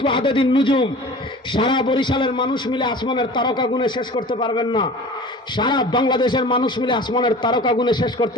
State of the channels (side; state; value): both; normal; correlation 0.40